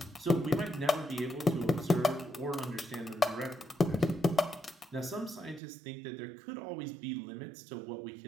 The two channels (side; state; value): left; drops out; at 5.6 s